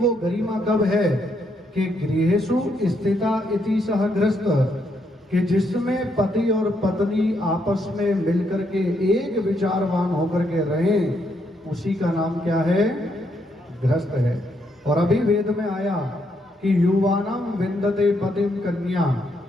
गरिमा कब है कि गृहेषु स्थिता इति सह गृहस्थ, कि जिसमें पति और पत्नी आपस में मिलकर के एक विचारवान होकर के रहें, उसी का नाम क्या है? गृहस्थ है। और अभी वेद में आया कि युवानाम विंदते पतिम कन्या,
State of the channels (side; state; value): both; normal; correlation 0.76